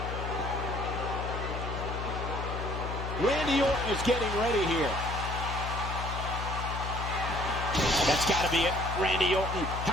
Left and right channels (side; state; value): left; noise; hum, 4 dB below the sound